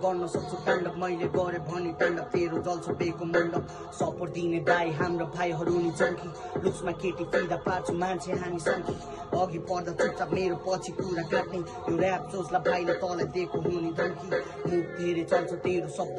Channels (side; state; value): both; identical; correlation 1.00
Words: गर्न सक्छु ताण्डव मैले गरे भने ताण्डव तेरो जल्छ बेको मण्डप सपोर्ट दिने दाइ हाम्रो भाइहरू नि चङ्की लुक्समा केटी फिदा पार्छु मान्छे हामी सङ्की अघि पर्दा चुपचाप मेरो पछि कुरा काट्ने यो ऱ्याप सोचलाई भाइले तँलाई दिएको हुने धम्की मुख धेरै चल्छ तेरो शब्द